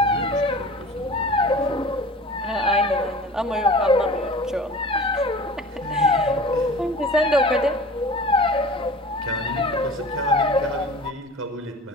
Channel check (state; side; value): normal; both; correlation 0.40